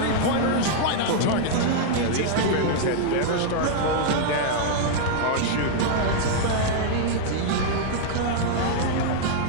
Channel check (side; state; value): both; different; correlation -0.01